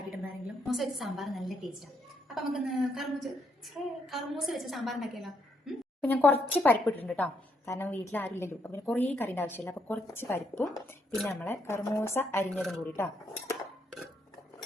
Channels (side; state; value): both; normal; correlation 0.75